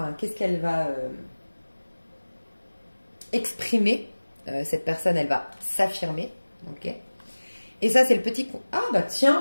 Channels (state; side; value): inverted; both; correlation -1.00